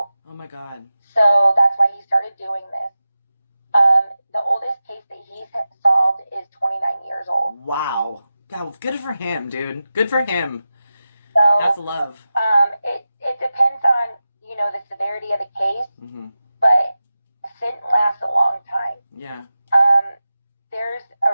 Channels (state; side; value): inverted; both; correlation -0.93